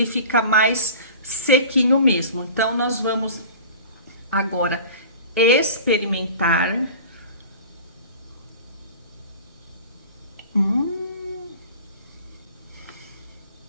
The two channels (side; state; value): both; inverted; correlation -0.40